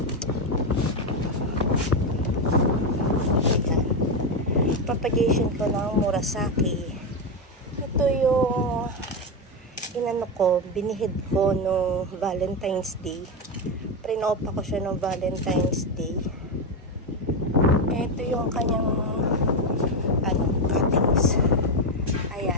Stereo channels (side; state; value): both; normal; correlation 0.10